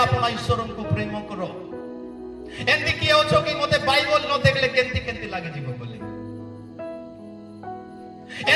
अपना ईश्वर को प्रेम करो एंती किए होछो कि मते बाइबल न देखले केंती केंती लागे जीव बोले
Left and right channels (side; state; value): both; identical; correlation 1.00